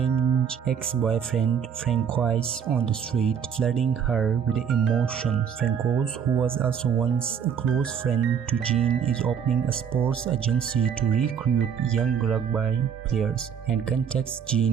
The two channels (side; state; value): left; quieter; 7.6 dB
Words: ex-boyfriend Francois on the street, flooding her with emotions. Francois, who was also once a close friend to Jean, is opening a sports agency to recruit young rugby players and contacts